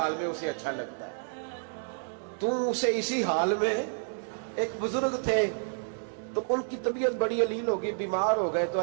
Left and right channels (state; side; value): silent; left; 58 dB below the other